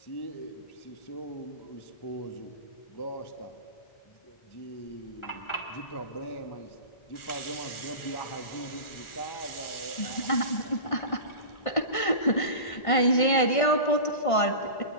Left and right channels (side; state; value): right; late; 1.5 ms